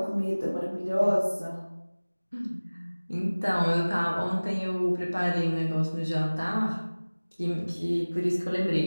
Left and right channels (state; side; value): inverted; both; correlation -1.00